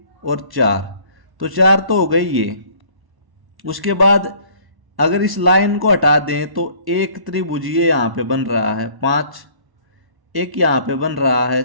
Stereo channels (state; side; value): late; left; 1.0 ms